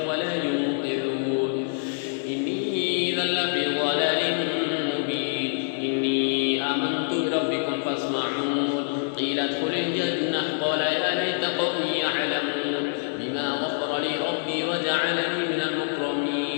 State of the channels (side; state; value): right; silent; 61 dB below the other